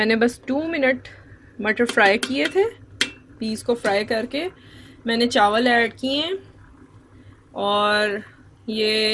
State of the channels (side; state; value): both; identical; correlation 1.00